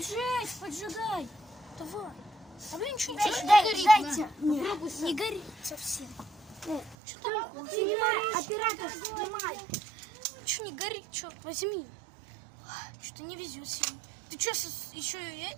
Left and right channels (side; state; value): left; drops out; at 7.0 s